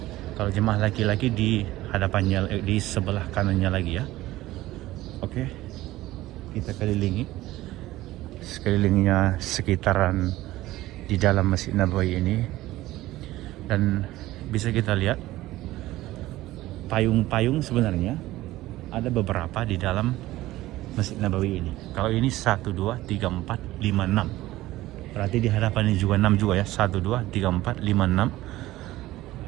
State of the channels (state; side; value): quieter; left; 16.6 dB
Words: Kalau jemaah laki-laki di hadapannya, di sebelah kanannya lagi ya. Oke, kita kelilingi sekelilingnya sekitaran di dalam Masjid Nabawi ini. Dan bisa kita lihat payung-payung sebenarnya ada beberapa di dalam Masjid Nabawi ini. Kalau ini 1, 2, 3, 4, 5, 6. Berarti di hadapan ini juga 6 juga ya. 1, 2, 3, 4, 5, 6.